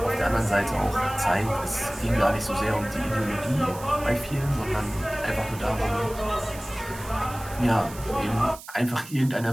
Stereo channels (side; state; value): right; noise; hiss, 16 dB below the sound